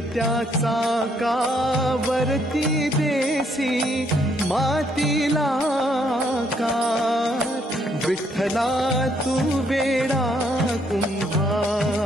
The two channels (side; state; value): both; normal; correlation 0.70